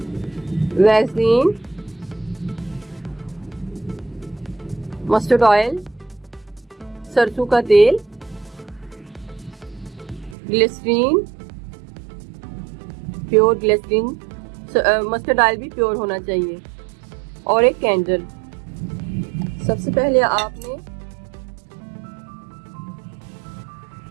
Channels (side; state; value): left; drops out; at 10.4 s